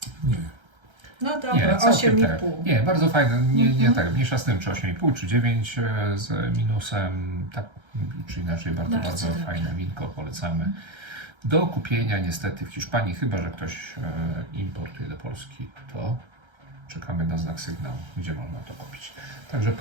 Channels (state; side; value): late; left; 1.3 ms